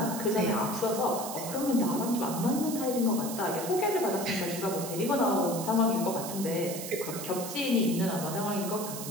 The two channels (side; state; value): right; noise; hiss, 8 dB below the sound